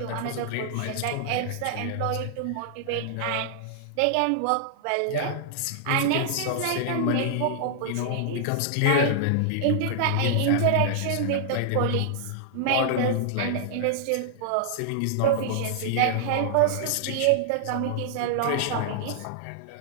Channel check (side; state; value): both; different; correlation -0.01